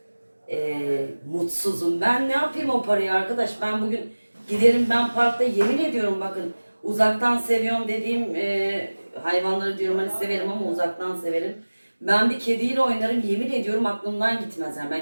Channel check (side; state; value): both; inverted; correlation -1.00